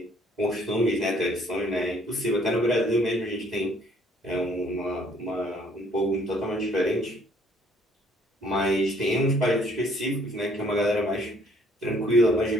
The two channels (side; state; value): both; normal; correlation 0.61